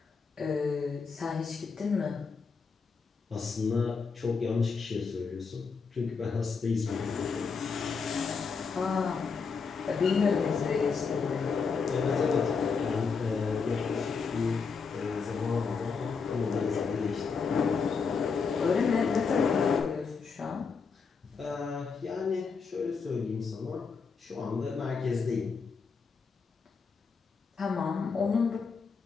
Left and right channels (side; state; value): right; quieter; 5.3 dB